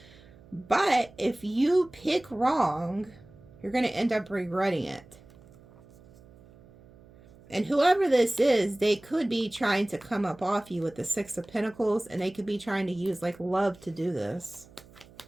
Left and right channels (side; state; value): right; noise; hum, 24 dB below the sound